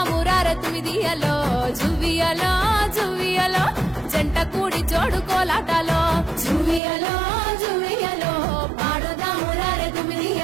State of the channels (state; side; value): drops out; left; at 6.8 s